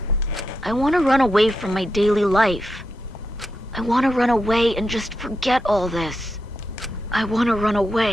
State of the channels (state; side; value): normal; both; correlation 0.86